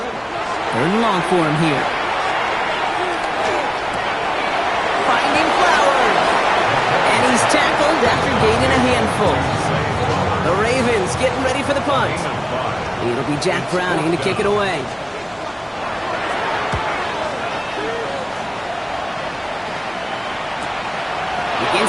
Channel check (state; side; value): identical; both; correlation 1.00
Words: and long for him here. Finding Flowers. And he's tackled after gaining a handful. The Ravens getting ready for the punt. It'll be Jack Browning to kick it away.